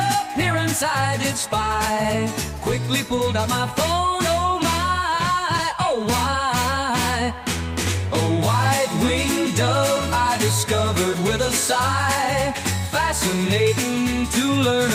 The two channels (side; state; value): both; identical; correlation 1.00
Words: I did spy. Quickly pulled out my phone, oh my, oh why? A white-winged dove I discovered with a sigh. Fascinating to learn